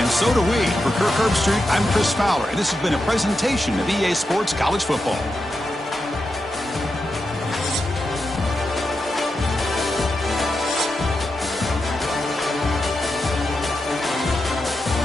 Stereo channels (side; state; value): both; normal; correlation 0.88